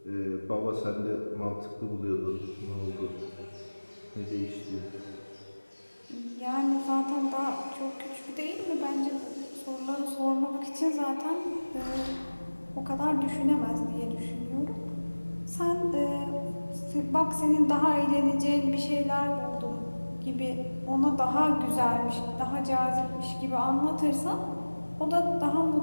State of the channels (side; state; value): both; inverted; correlation -1.00